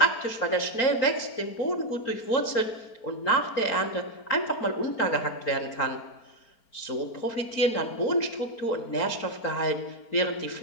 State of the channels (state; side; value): late; right; 4.4 ms